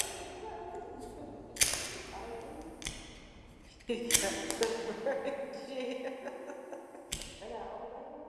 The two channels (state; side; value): identical; both; correlation 1.00